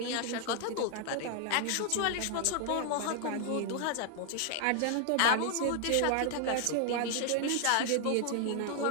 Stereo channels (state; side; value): different; both; correlation 0.00